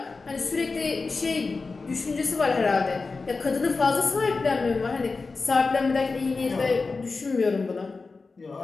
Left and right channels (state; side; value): quieter; right; 4.1 dB